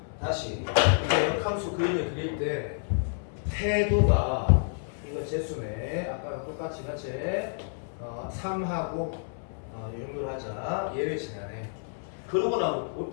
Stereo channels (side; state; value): right; silent; 58 dB below the other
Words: 다시 이제 역함수 그림을 그릴 때 태도가 이거 재수네. 아까랑 똑같이 같이 3하고 이 정도로 하자. 얘를 지나네. 그러고 나면